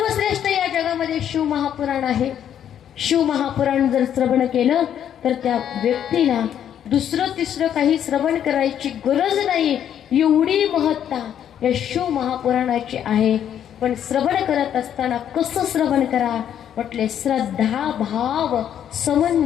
या जगामध्ये शिव महापुराण आहे. शिव महापुराण जर श्रवण केलं तर त्या व्यक्तीला दुसरं तिसरं काही श्रवण करायची गरज नाही, एवढी महत्ता या शिव महापुराणाची आहे. पण श्रवण करत असताना कसं श्रवण करा म्हटले, श्रद्धा भाव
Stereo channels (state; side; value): quieter; right; 9.7 dB